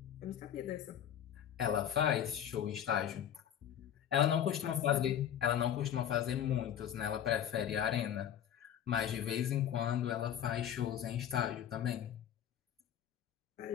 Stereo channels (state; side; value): quieter; right; 9.9 dB